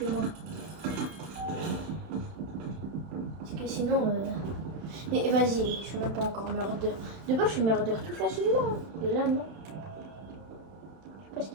Parce que sinon... Mais vas-y, je suis même pas encore murder. De base, je suis murder tout facilement. Hein. Et là, non. Je sais pas ce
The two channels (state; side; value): late; left; 31 ms